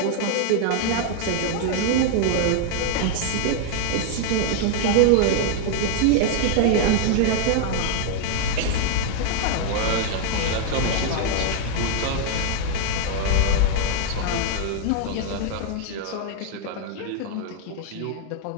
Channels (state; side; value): different; both; correlation 0.00